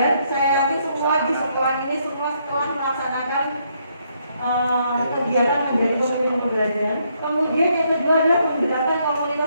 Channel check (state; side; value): inverted; both; correlation -0.73